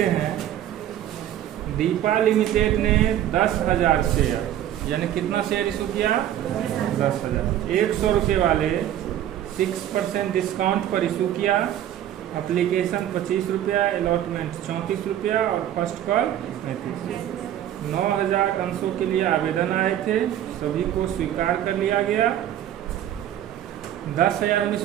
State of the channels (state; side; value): quieter; left; 11.6 dB